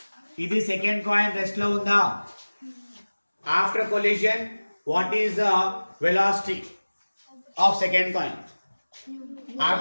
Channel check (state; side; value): inverted; both; correlation -1.00